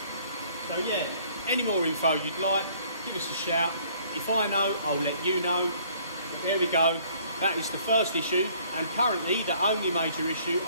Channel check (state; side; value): inverted; both; correlation -0.59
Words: So yeah, any more info you'd like, give us a shout. If I know, I'll let you know. But there we go. That is the first issue, and currently the only major issue